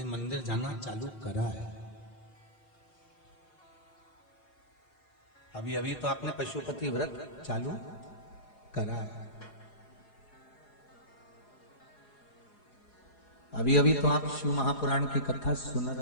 मंदिर जाना चालू करा है, अभी अभी तो आपने पशुपति व्रत चालू करा है, अभी अभी तो आप शिव महापुराण की कथा सुन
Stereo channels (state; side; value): late; right; 4.9 ms